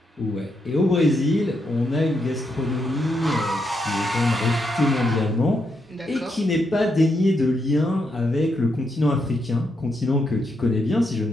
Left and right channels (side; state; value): both; normal; correlation 0.80